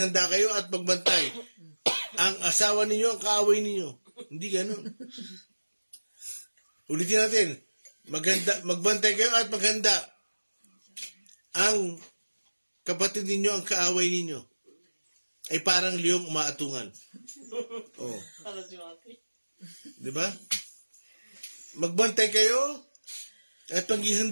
kayo at magbantay. Ang asawa ninyo ang kaaway ninyo. Hindi ganun. Ulitin natin. Magbantay kayo at maghanda. Ang kapatid ninyo ang kaaway ninyo. Ay parang liyong umaatungan. Oh. Di ba? Magbantay kayo at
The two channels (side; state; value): both; inverted; correlation -1.00